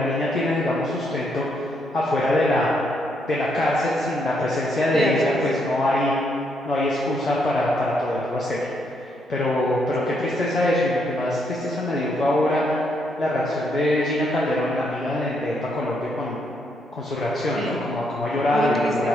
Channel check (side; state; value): both; normal; correlation 0.75